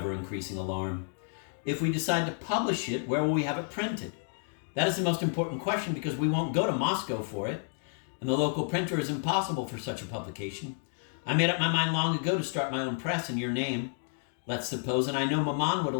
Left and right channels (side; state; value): right; silent; 57 dB below the other